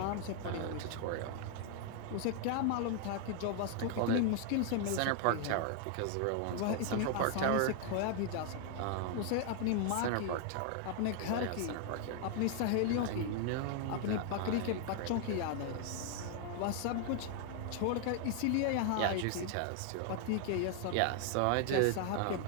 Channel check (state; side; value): different; both; correlation 0.00